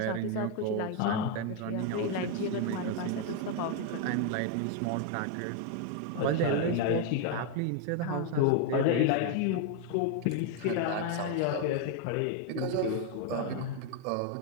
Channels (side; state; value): both; different; correlation 0.01